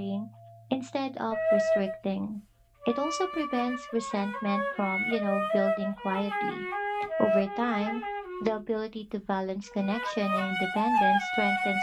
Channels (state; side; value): identical; both; correlation 1.00